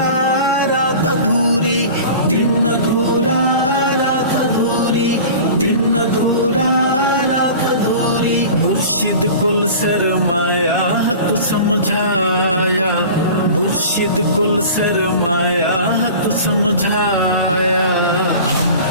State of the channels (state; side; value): inverted; both; correlation -0.38